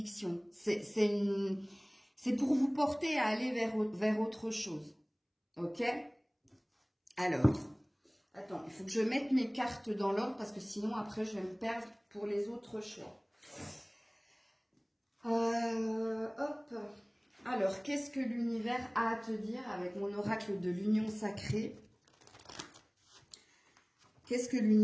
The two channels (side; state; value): both; identical; correlation 1.00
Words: C'est pour vous porter à aller vers autre chose. Ok? Alors, attends, il faut que je mette mes cartes dans l'ordre parce que sinon, après, je vais me perdre pour les autres choix. Hop. Alors, qu'est-ce que l'univers a à te dire avec mon oracle de l'union sacrée? Qu'est-ce que